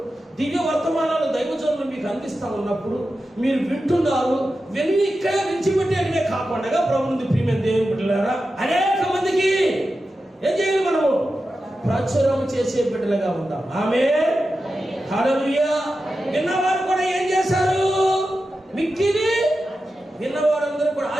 దివ్య వర్తమానాలు దైవజనులు మీకు అందిస్తా ఉన్నప్పుడు మీరు వింటున్నారు. విని ఇక్కడే విడిచిపెట్టేటనే కాకుండా ప్రభువుని ప్రియమైన దేవుని బిడ్డలారా అనేక మందికి ఏం చేయాలి, మనము ప్రచురం చేసే బిడ్డలుగా ఉందాం. ఆమేన్, హల్లెలూయా. విన్నవారు కూడా ఏం చేశారు, మిక్కిలి విన్నవారందరూ కూడా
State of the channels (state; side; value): normal; both; correlation 0.91